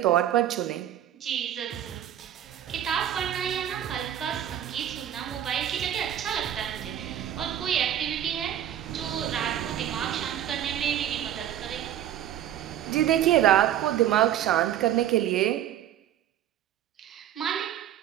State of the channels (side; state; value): left; quieter; 11.1 dB